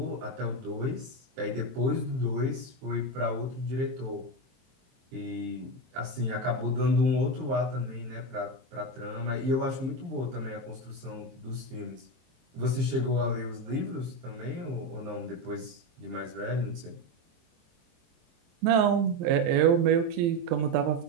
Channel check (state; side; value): late; left; 23 ms